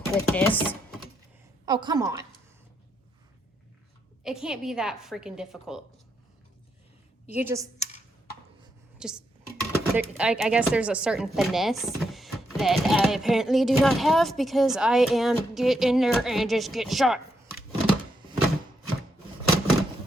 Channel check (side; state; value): both; normal; correlation 0.80